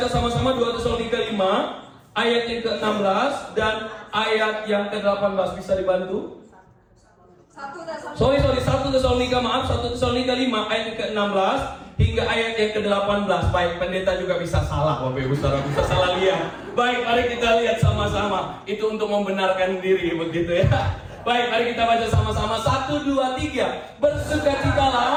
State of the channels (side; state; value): both; identical; correlation 1.00